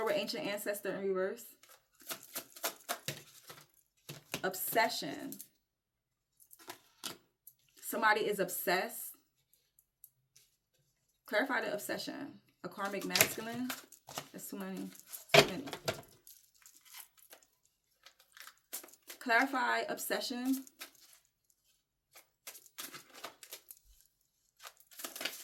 with ancient ancestor in reverse. Obsession. Somebody is obsessed. Clarify the obsession. A karmic masculine. That's too many. Too many. Clarify obsession.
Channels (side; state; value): both; identical; correlation 1.00